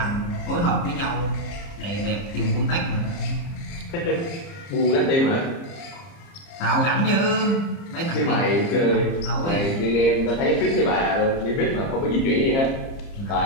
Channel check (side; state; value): right; late; 30 ms